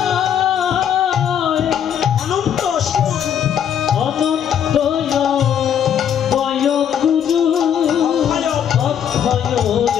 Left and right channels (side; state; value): right; quieter; 8.9 dB